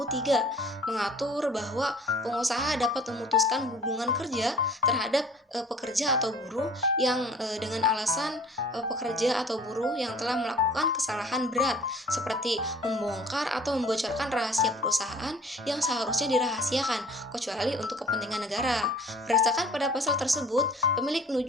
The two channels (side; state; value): both; normal; correlation 0.50